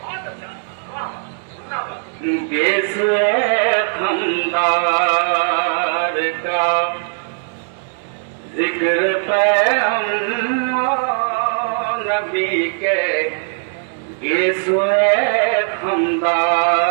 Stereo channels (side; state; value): left; silent; 67 dB below the other